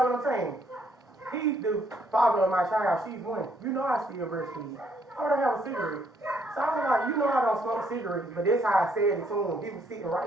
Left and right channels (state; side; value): normal; both; correlation 0.69